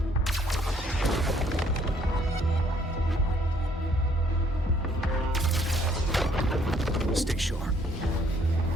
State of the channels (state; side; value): normal; both; correlation 0.65